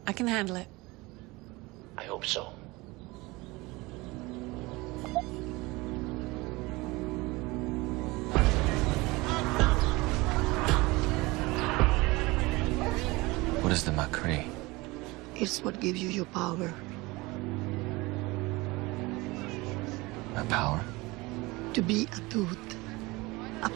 I can handle it. I hope so. What is the Macri? It's what gives you your power. My power? To be a Dut, a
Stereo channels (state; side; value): quieter; left; 22.6 dB